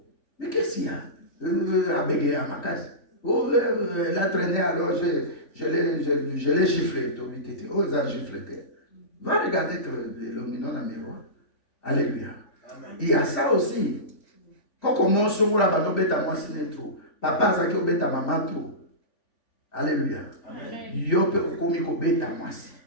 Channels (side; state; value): right; late; 3.5 ms